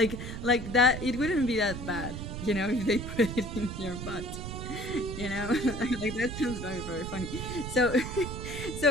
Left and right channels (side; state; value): right; noise; rumble, 7 dB below the sound